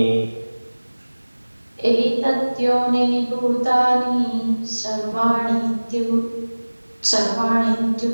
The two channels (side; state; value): both; inverted; correlation -1.00